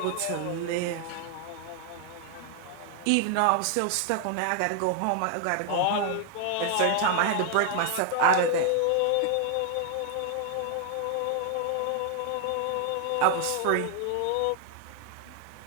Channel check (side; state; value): both; different; correlation 0.00